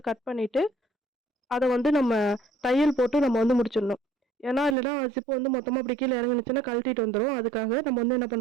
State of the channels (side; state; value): left; drops out; at 4.8 s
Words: கட் பண்ணிட்டு, அத வந்து நம்ம தையல் போட்டு நம்ம வந்து முடிச்சிடணும். ஏன்னா, இல்லன்னா ஜிப் வந்து மொத்தமா அப்படி கீழ இறங்குனுச்சுன்னா கழட்டிட்டு வந்துரும். அதுக்காக நம்ம வந்து என்ன